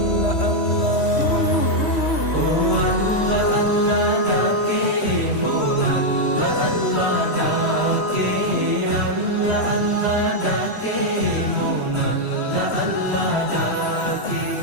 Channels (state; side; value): late; right; 3.1 ms